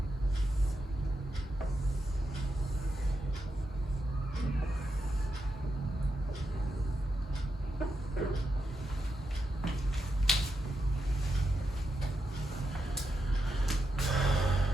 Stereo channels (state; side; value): normal; both; correlation 0.85